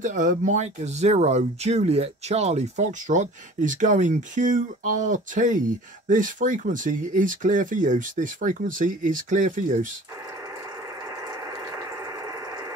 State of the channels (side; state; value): both; normal; correlation 0.45